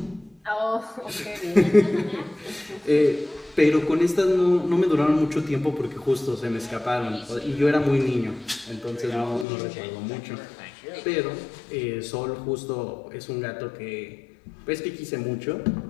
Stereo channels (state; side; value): drops out; right; at 9.5 s